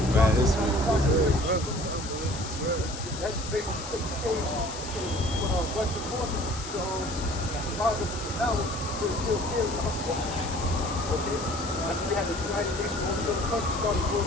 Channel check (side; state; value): left; noise; hiss, 10 dB below the sound